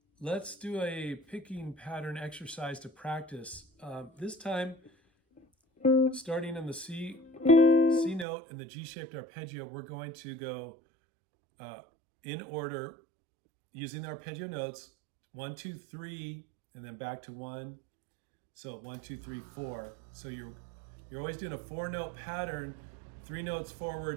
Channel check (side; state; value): left; drops out; at 8.2 s